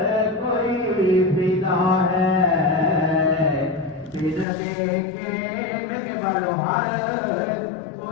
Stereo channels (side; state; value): right; drops out; at 4.5 s